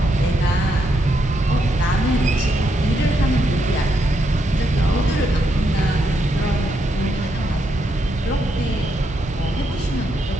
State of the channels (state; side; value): normal; both; correlation 0.79